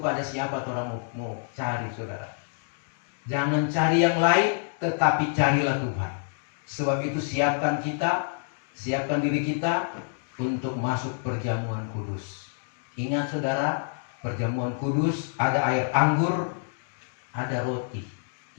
siapa orang mau cari, saudara? Jangan cari yang lain, tetapi carilah Tuhan. Sebab itu siapkan diri kita untuk masuk perjamuan kudus. Ingat, saudara, perjamuan kudus ada air anggur, ada roti.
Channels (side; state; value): right; silent; digital silence